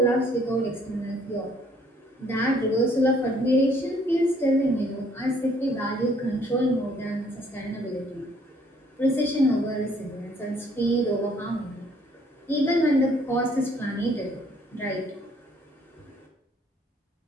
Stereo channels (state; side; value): normal; both; correlation 0.63